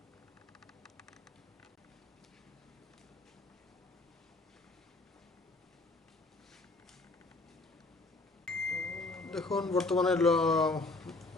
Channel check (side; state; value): right; quieter; 3.2 dB